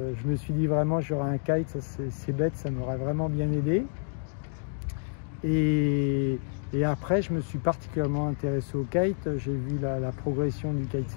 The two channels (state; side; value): silent; right; digital silence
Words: me suis dit vraiment j'aurais un kite, c'est bête, ça m'aurait vraiment bien aidé. Et après, je me suis particulièrement intéressé au kite. J'ai vu la progression du